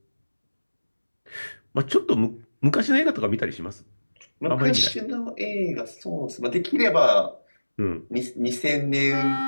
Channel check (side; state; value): both; inverted; correlation -1.00